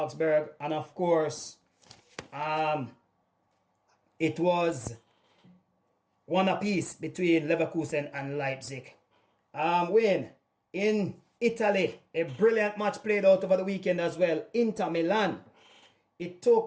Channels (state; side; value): identical; both; correlation 1.00